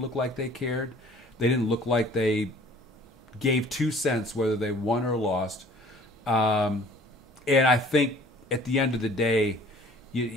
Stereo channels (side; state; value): both; normal; correlation 0.52